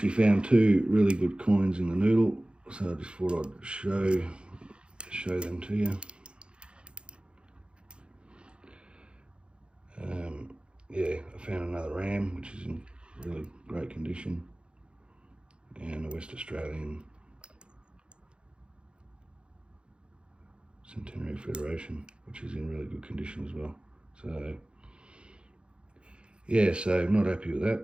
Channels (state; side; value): late; left; 0.055 ms